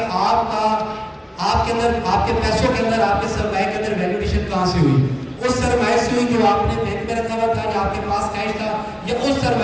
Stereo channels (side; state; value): both; identical; correlation 1.00